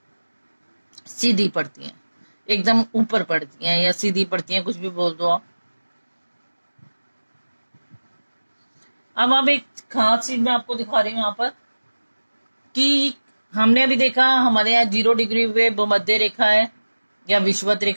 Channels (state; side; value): inverted; both; correlation -1.00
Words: सीधी पड़ती हैं, एकदम ऊपर पड़ती हैं या सीधी पड़ती हैं, कुछ भी बोल दो आप। अब एक खास चीज मैं आपको दिखा रही हूँ यहाँ पर कि हमने अभी देखा हमारे यहाँ 0 डिग्री पे भूमध्य रेखा है या विषुवत